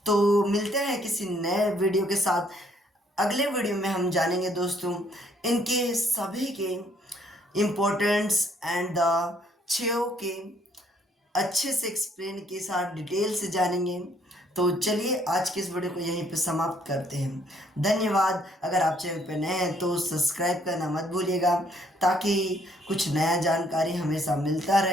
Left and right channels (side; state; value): both; normal; correlation 0.66